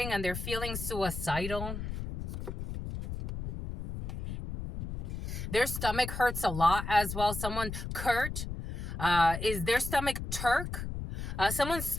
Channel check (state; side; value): noise; left; rumble, 6 dB below the sound